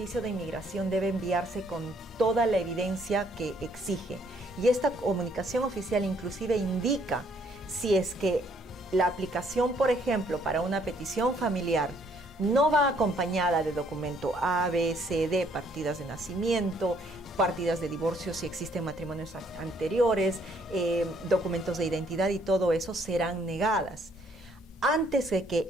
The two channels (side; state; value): both; normal; correlation 0.66